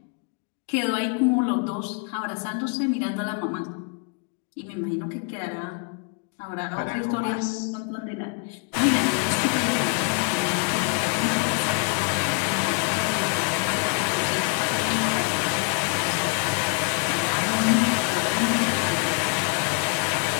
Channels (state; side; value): quieter; right; 36.8 dB